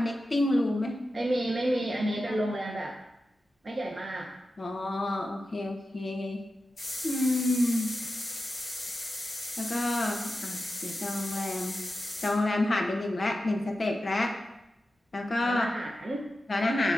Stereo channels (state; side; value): normal; both; correlation 0.92